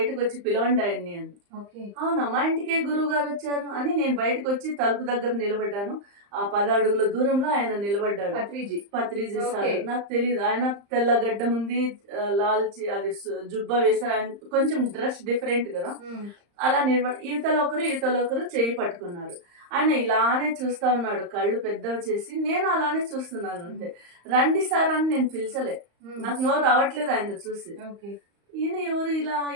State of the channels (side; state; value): left; late; 35 ms